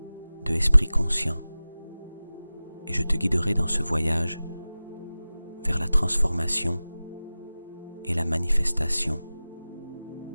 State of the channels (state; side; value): inverted; both; correlation -0.97